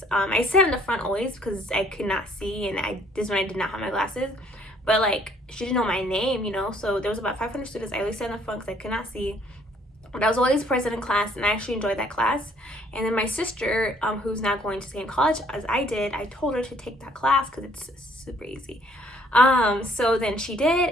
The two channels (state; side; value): normal; both; correlation 0.62